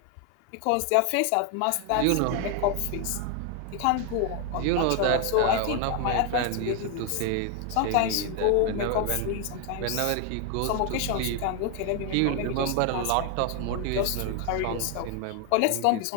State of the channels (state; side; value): different; both; correlation 0.00